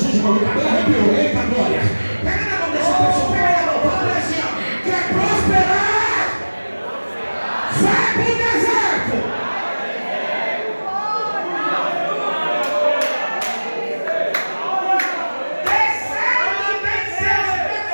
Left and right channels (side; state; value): both; inverted; correlation -1.00